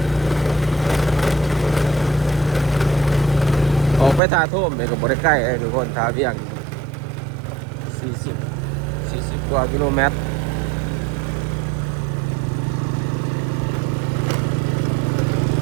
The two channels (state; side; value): drops out; left; at 4.2 s